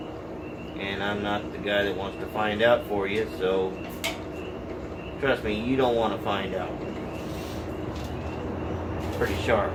And I'm not the guy that wants to find out for you, so trust me, you don't want to find out. It's pretty sharp.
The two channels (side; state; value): left; noise; hum, 26 dB below the sound